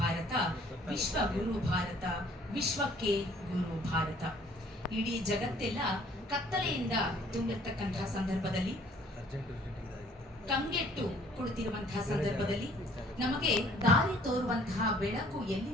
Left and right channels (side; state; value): both; normal; correlation 0.58